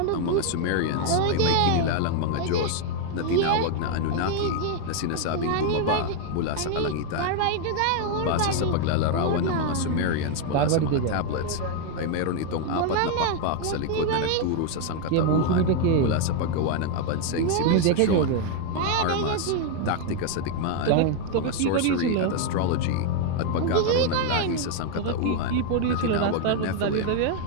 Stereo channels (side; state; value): both; different; correlation 0.00